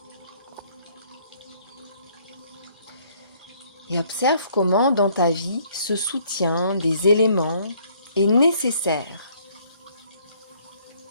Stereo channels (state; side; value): inverted; both; correlation -0.63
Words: Et observe comment dans ta vie ce soutien des éléments est nécessaire.